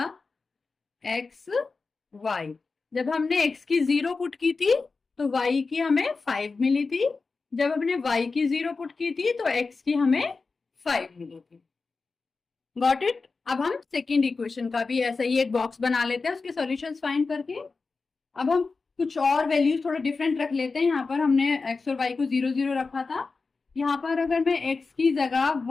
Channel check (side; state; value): right; quieter; 4.2 dB